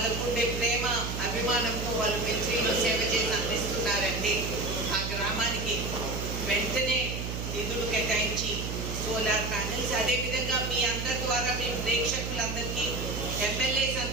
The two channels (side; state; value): right; noise; hum, 4 dB below the sound